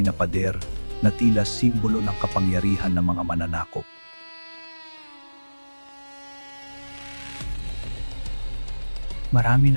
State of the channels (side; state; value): both; inverted; correlation -1.00